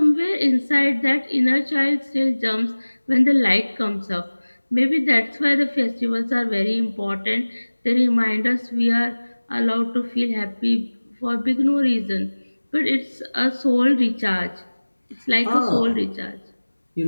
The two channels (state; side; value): inverted; both; correlation -1.00